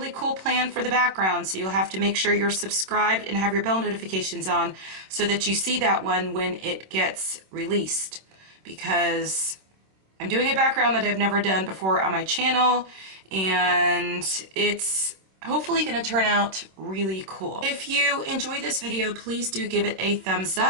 cool plan for the background, so you'll have to make sure you're subscribed and have your bell notifications on so that you see that one when it gets released, because I'm doing a background that I've never done before on my channel, and it's hopefully going to turn out really cool. If you enjoy this video, please do give it a thumbs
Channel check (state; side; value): late; left; 26 ms